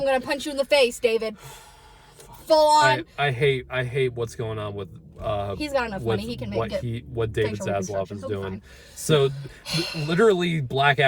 gonna punch you in the face, David. Full on. I hate what's going on with. He's got enough with money. He can make what it. what David facial Zaslav reconstruction. is He'll be doing. fine. So, literally, Black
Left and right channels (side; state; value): both; identical; correlation 1.00